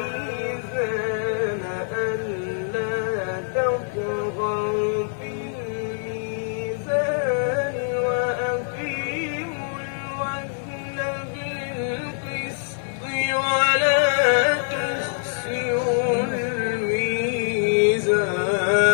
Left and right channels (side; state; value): right; silent; 55 dB below the other